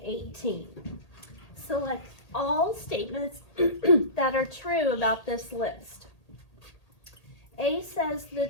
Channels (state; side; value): late; right; 1.8 ms